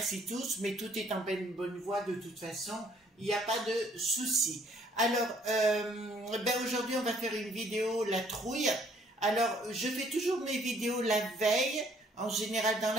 tous, mais tout est en bonne voie de toute façon. Il n'y a pas de souci. Alors, aujourd'hui, on va faire une vidéo, la trouille. Alors, je fais toujours mes vidéos la veille, en général dans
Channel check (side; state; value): both; normal; correlation 0.62